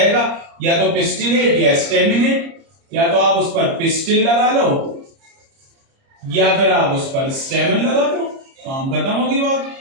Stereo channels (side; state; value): left; late; 30 ms